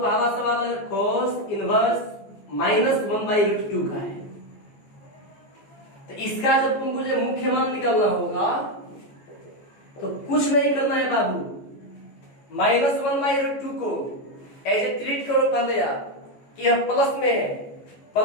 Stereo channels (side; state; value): right; late; 14 ms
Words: सवाल अगर cos इनवर्स -1/√2 का है, तो इसका जब तुमको जो मुख्य मान निकालना होगा तो कुछ नहीं करना है बाबू, -1/√2 को ऐसे ट्रीट करो पहले आप कि यह प्लस में है,